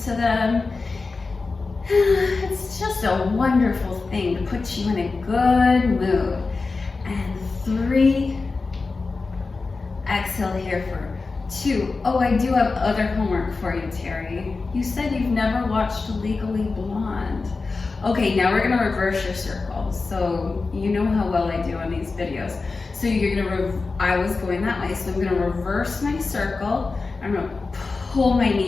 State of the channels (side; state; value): right; quieter; 4.0 dB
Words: to them. It's just a wonderful thing to put you in a good mood. And 3, exhale here for 2. Oh, I do have other homework for you, Terri. You said you've never watched Legally Blonde. Okay, now we're gonna reverse your circle. So you know how well I do on these videos. So you're gonna, I was going that way, so I'm gonna reverse my circle. I'm gonna pull my